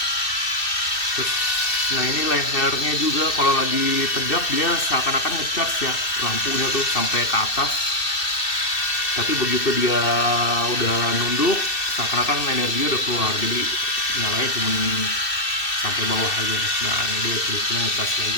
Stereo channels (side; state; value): right; late; 2.6 ms